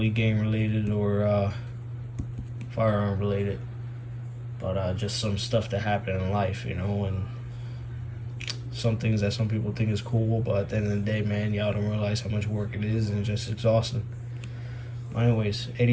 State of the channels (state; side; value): identical; both; correlation 1.00